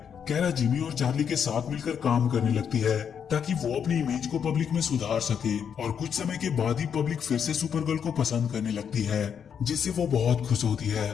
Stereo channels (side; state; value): right; quieter; 7.6 dB